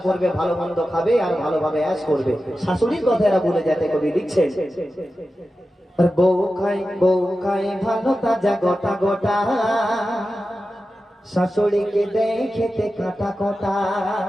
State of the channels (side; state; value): both; normal; correlation 0.93